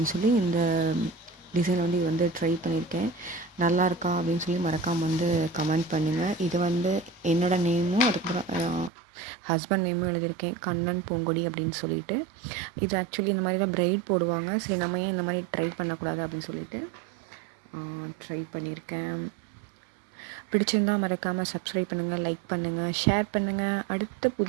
சொல்லி இந்த டிசைன் வந்து இது வந்து ட்ரை பண்ணியிருக்கேன். நல்லா இருக்கா அப்படின்னு சொல்லி மறக்காமல் வந்து கமெண்ட் பண்ணுங்கள். இது வந்து என்னோடய நேமும் அதுக்கப்புறம் ஹஸ்பண்ட் நேமும் எழுதியிருக்கேன், கண்ணன் பூங்கொடி அப்படின்னு சொல்லிட்டு. இது ஆக்சுவலி இந்த மாதிரி தான் பிரைட் போடுவாங்க. சரி, நம்ம ஏன் இந்த மாதிரி ட்ரை பண்ணக்கூடாது அப்படின்னு சொல்லிட்டு ட்ரை பண்ணியிருக்கேன். பிடிச்சிருந்தால் மறக்காமல் சப்ஸ்கிரைப் பண்ணுங்கள், லைக் பண்ணுங்கள், ஷேர் பண்ணுங்கள். அடுத்த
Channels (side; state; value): left; drops out; at 8.9 s